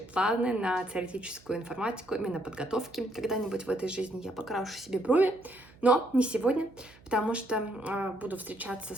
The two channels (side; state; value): right; noise; hum, 25 dB below the sound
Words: планы на теоретическую информатику, именно подготовки. Когда-нибудь в этой жизни я покрашу себе брови, но не сегодня, потому что буду встречаться